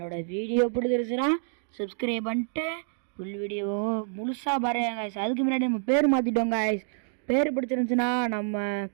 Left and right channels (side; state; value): left; silent; digital silence